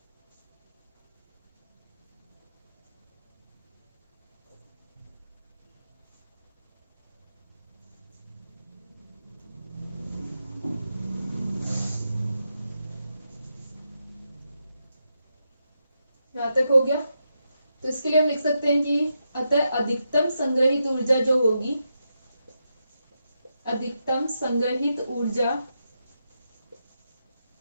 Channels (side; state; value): both; inverted; correlation -0.85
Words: यहाँ तक हो गया। तो इसके लिए हम लिख सकते हैं कि अतः अधिकतम संग्रहित ऊर्जा जो होगी, अधिकतम संग्रहित ऊर्जा,